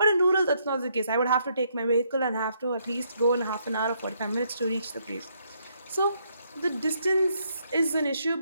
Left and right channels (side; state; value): both; inverted; correlation -0.73